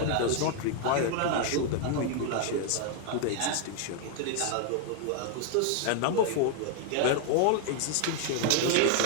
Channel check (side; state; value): both; different; correlation 0.00